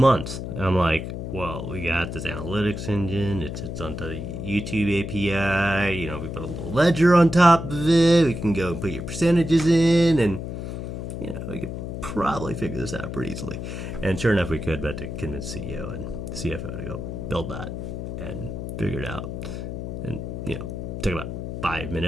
And I'm like, well, we got this analytics engine. It sits on the YouTube API. You know, we put a little ledger on top of it. We can go and put your percentages in, and you know, we could probably figure this out pretty easily. And sure enough, we could, but to convince CEO and CFO to go build that and figure it out. And, you know, it took about 5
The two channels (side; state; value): left; noise; hum, 6 dB below the sound